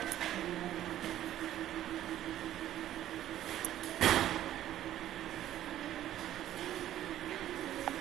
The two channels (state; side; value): quieter; left; 12.5 dB